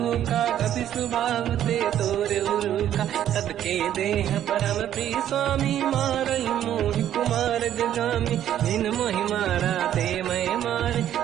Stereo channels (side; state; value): left; quieter; 11.1 dB